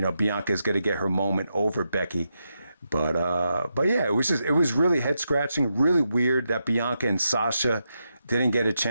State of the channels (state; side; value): inverted; both; correlation -0.85